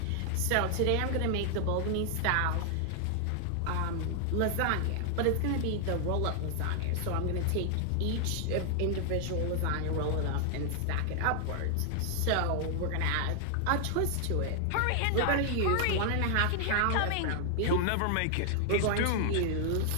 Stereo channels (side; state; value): both; different; correlation 0.00